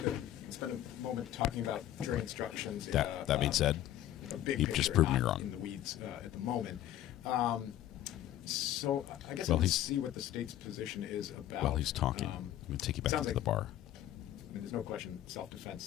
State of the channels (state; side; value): quieter; right; 12.7 dB